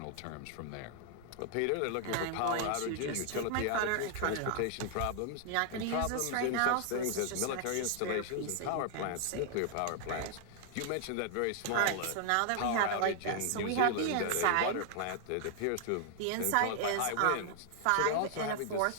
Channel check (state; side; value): different; both; correlation 0.00